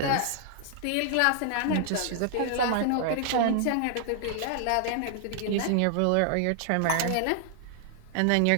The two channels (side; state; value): both; different; correlation 0.00